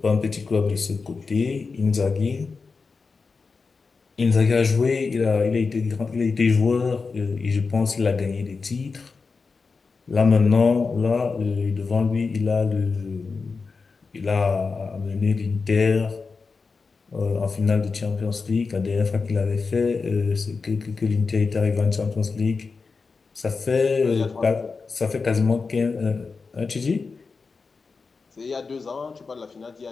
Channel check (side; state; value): right; quieter; 4.6 dB